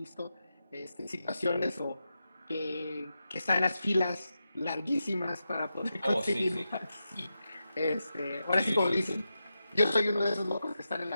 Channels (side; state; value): both; inverted; correlation -0.89